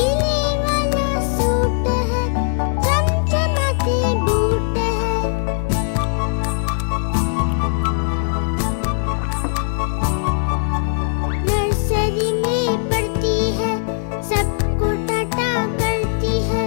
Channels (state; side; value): silent; right; digital silence